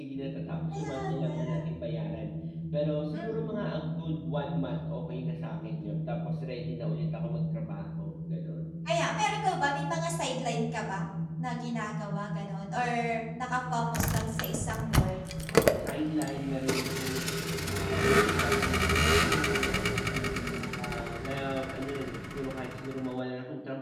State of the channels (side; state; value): both; identical; correlation 1.00